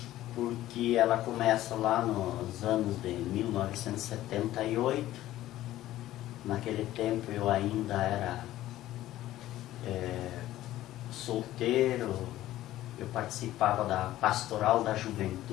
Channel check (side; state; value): right; quieter; 14.6 dB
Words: porque ela começa lá nos anos de 1978. Naquele tempo eu ainda era solteiro, eu participava da Pastoral da